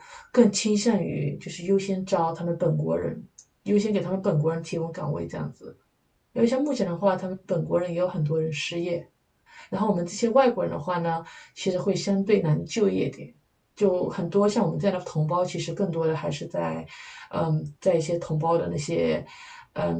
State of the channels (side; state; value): both; identical; correlation 1.00